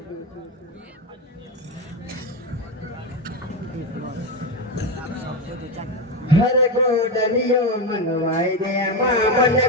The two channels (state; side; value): normal; both; correlation 0.13